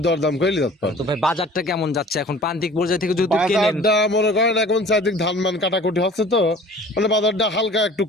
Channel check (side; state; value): both; normal; correlation 0.46